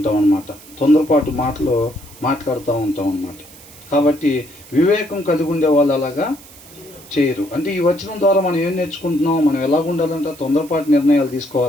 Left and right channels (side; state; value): right; noise; hiss, 21 dB below the sound